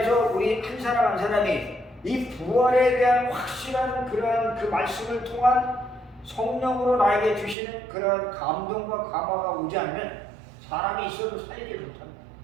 우리 한 사람 한 사람이 이 부활에 대한 확실한 그러한 그 말씀을 통한 성령으로 나에게 주시는 그러한 감동과 감화가 오지 않으면 사람이 있어도 살리지 못합니다.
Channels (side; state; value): left; drops out; at 7.6 s